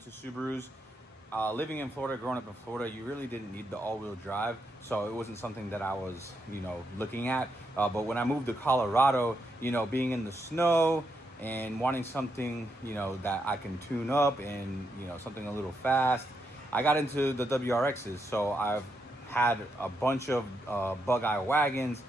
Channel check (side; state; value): both; normal; correlation 0.81